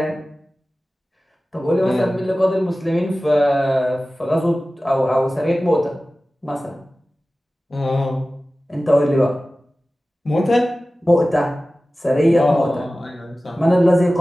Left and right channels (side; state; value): both; normal; correlation 0.96